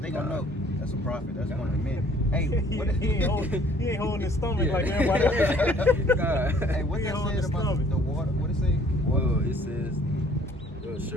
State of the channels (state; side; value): normal; both; correlation 0.57